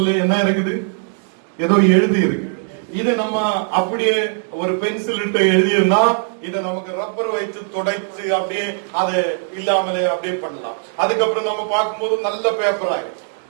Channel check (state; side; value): silent; left; 63 dB below the other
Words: என்ன இருக்குது, ஏதோ எழுதி இருக்கு. இது நம்ம அப்படியே ஒரு பென்சில் இட்டு எழுதியிருந்தா இதை நமக்கு ரப்பர் வைத்து துடைத்து அப்படியே அது இல்லாமலே அப்படியே பண்ணலாம். அதுக்கப்புறம் நம்ம பார்க்கும்போது நல்ல பேப்பர் ஆகும்.